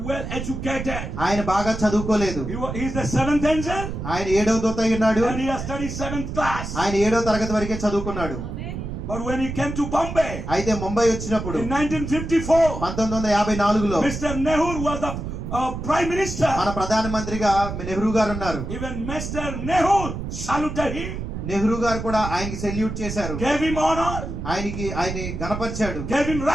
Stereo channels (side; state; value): right; noise; rumble, 6 dB below the sound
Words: well educated. ఆయన బాగా చదువుకోలేదు. He is the 7th angel ఆయన 7వ దూత అయి ఉన్నాడు. and he has studied 7th class. ఆయన 7వ తరగతి వరకే చదువుకున్నాడు. But when he came to Bombay అయితే ముంబై వచ్చినప్పుడు in 1954, 1954లో Mr. Nehru was the prime minister. మన ప్రధానమంత్రిగా నెహ్రూ గారు ఉన్నారు. Even Mr. Nehru saluted him, Nehru గారు కూడా ఆయనకి సెల్యూట్ చేశారు. gave him honor, ఆయన్ని గణపరిచాడు. gave him